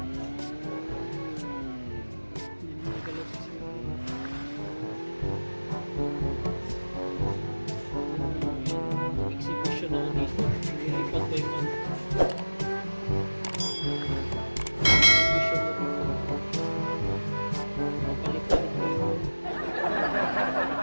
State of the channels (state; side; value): inverted; both; correlation -1.00